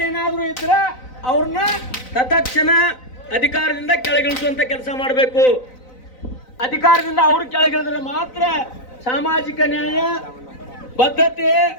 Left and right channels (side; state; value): right; late; 4.0 ms